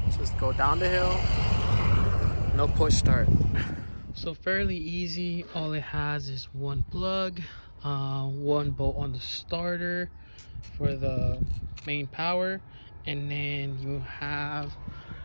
Just go down the hill. No push start. So fairly easy. All it has is 1 plug, 1 bolt on the starter for the main power, and then you have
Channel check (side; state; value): both; inverted; correlation -1.00